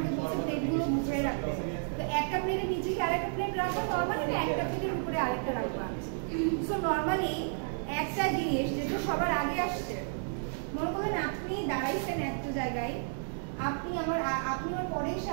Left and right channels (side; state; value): left; silent; digital silence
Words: বলছে প্লেটগুলো মুছে রাখতে, তো একটা প্লেটের নিচে কি আরেকটা প্লেট রাখবা নরমালি, না একটা প্লেটের উপরে আরেকটা রাখবা? সো নরমালি একটা জিনিস যেটা সবার আগে আসছে, মনে করেন আপনি দাঁড়াইছেন একটা জায়গায়, আপনি আমার পরে এসে